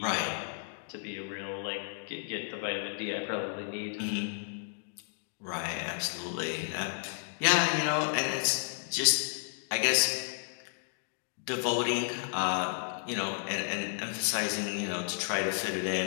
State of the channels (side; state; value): right; silent; digital silence